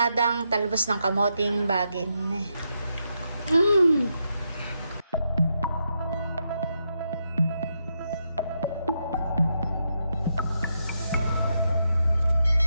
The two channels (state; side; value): inverted; both; correlation -0.82